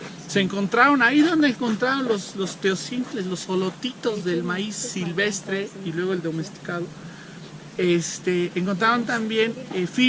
se encontraron ahí donde encontraron los teocintles, los solotitos del maíz silvestre y luego el domesticado. Encontraron también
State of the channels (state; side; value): identical; both; correlation 1.00